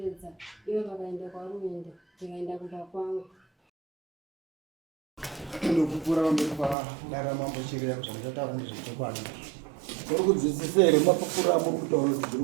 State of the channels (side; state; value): left; drops out; at 6.8 s